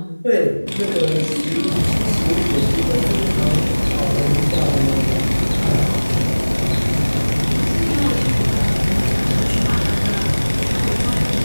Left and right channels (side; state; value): both; inverted; correlation -1.00